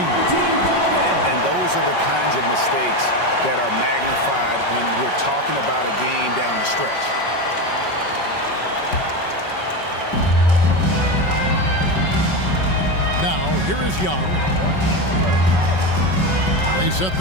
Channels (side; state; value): right; late; 5.3 ms